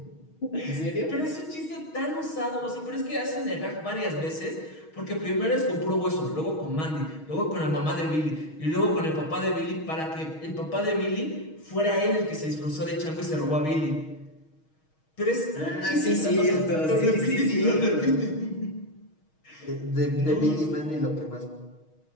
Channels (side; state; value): right; late; 6.4 ms